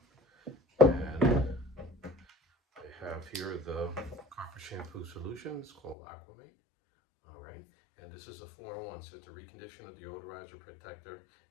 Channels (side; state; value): right; drops out; at 6.0 s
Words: And I have here the Carpet Shampoo Solution. It's called Aquamate. All right, and this is a 4-in-1, so it's a reconditioner, deodorizer, protector,